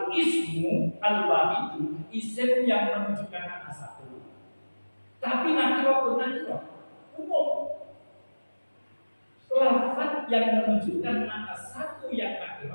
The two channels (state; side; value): inverted; both; correlation -1.00